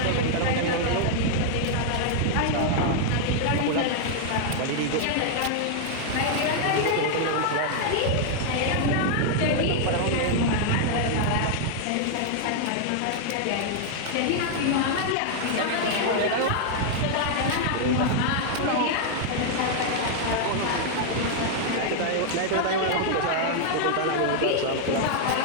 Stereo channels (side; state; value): both; different; correlation -0.01